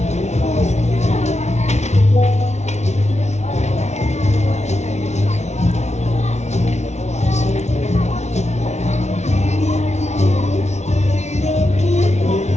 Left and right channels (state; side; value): late; right; 0.32 ms